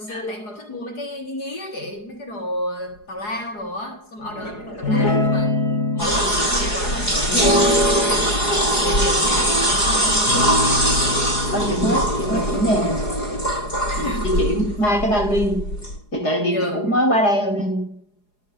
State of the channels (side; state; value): right; late; 4.8 ms